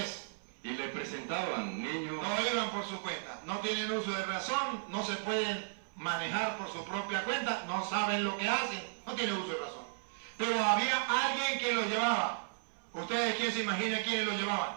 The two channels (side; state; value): left; silent; 54 dB below the other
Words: y le presentaban niños, No iban por su cuenta. No tienen uso de razón. No se pueden manejar por su propia cuenta. No saben lo que hacen. No tienen uso de razón. Pero había alguien que los llevaba. ¿Ustedes quién se imagina quiénes los llevaban?